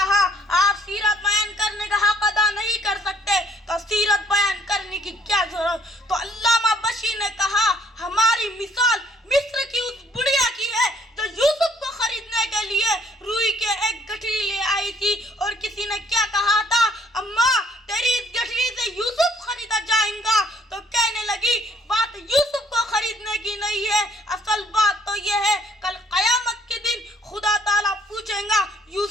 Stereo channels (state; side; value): normal; both; correlation 0.63